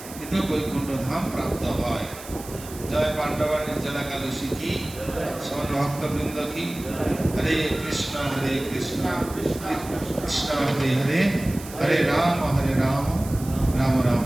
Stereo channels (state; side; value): noise; right; hiss, 15 dB below the sound